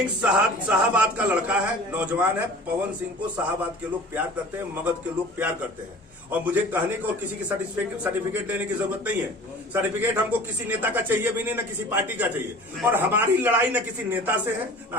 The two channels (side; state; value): both; normal; correlation 0.43